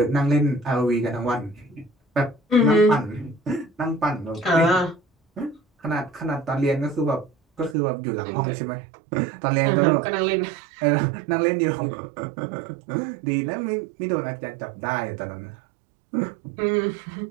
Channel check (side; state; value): left; drops out; at 7.8 s